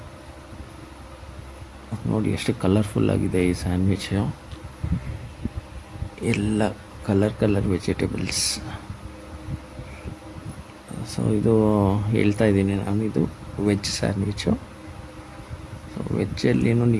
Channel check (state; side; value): identical; both; correlation 1.00